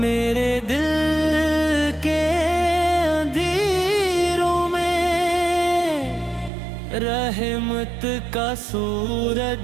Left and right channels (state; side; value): drops out; left; at 6.5 s